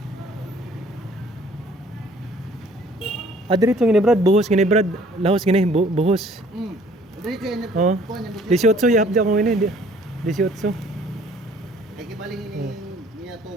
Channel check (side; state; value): both; normal; correlation 0.57